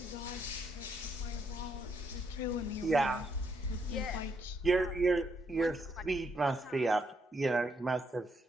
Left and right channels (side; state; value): both; normal; correlation 0.75